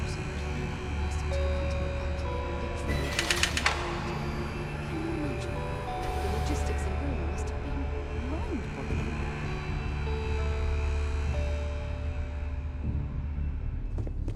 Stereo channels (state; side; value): identical; both; correlation 1.00